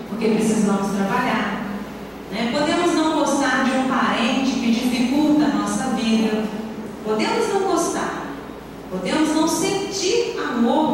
porque precisamos trabalhar, né? Podemos não gostar de um parente que dificulta a nossa vida, podemos não gostar, podemos não sentir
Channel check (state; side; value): identical; both; correlation 1.00